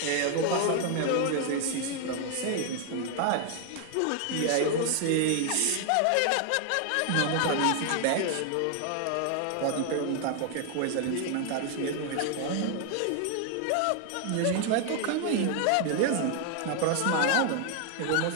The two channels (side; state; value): both; different; correlation 0.00